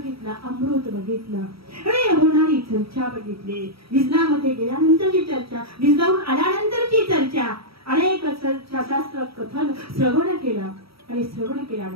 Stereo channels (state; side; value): late; left; 0.76 ms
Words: अमृत बघितलं आणि होणारी चर्चा बघितली. विजनामध्ये गेल्यानंतरची चर्चा, विजनावरून आल्यानंतरची चर्चा, अनेक शास्त्र कथन श्रवण केलं. आणि श्रवण